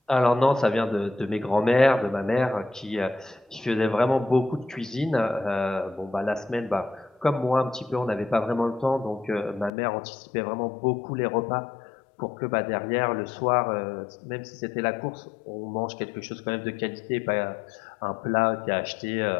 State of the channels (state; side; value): drops out; right; at 9.7 s